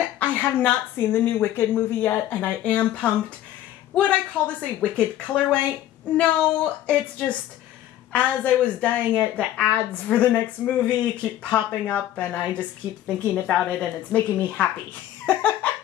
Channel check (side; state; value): right; quieter; 12.8 dB